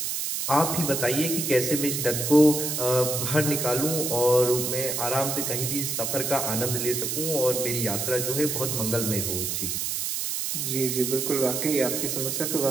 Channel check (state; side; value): noise; right; hiss, 1 dB below the sound